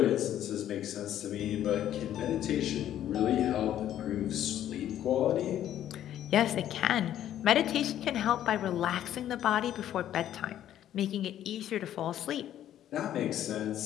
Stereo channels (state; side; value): quieter; right; 11.5 dB